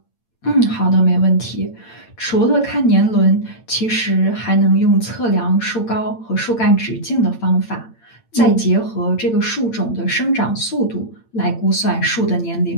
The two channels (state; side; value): late; right; 8.9 ms